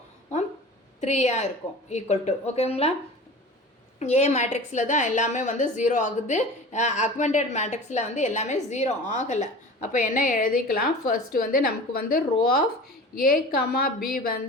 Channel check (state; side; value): normal; both; correlation 0.37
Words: 3ஆக இருக்கும் ஈக்குவல் டு. ஓகேங்களா. ஏ மேட்ரிக்ஸில் தான் எல்லாமே வந்து 0 ஆகுது. அக்மெண்டட் மேட்ரிக்ஸில் வந்து எல்லாமே 0 ஆகலை. அப்போ என்ன எழுதிக்கலாம், ஃபர்ஸ்ட்டு வந்து நமக்கு வந்து ரோ ஆஃப் ஏ பி